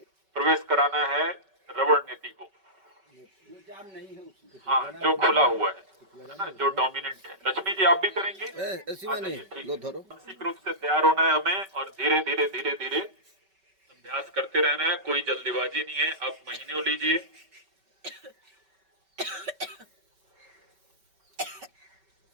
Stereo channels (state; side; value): late; left; 5.2 ms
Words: प्रवेश कराना है रवण नीति को। हाँ, जो खुला हुआ है ना, जो डोमिनेंट है। लक्ष्मी जी आप भी करेंगे? मानसिक रूप से तैयार होना है हमें और धीरे धीरे धीरे धीरे अभ्यास करते रहना है, कोई जल्दीबाजी नहीं है। आप महीने लीजिए।